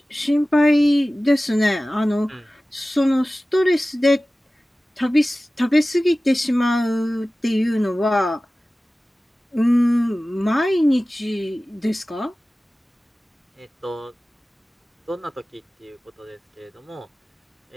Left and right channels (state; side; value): normal; both; correlation 0.96